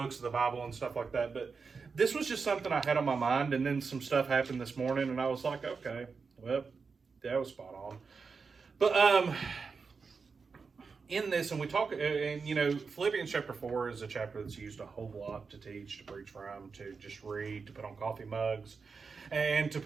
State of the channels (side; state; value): left; quieter; 5.0 dB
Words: of the Bible and stuff like that. But this was just something I had on my mind, and then some stuff happened this morning, and I was like, okay, well, that was spot on. But in this, and we talk, and Philippians chapter 4 is a chapter that's used a whole lot to teach, to preach from, to just read, to put on coffee mugs, and to